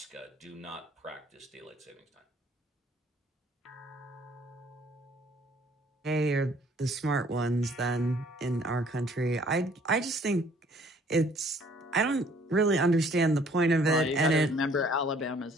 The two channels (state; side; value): normal; both; correlation 0.59